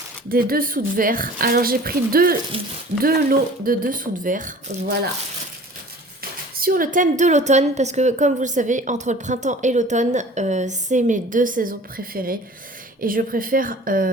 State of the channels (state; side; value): normal; both; correlation 0.45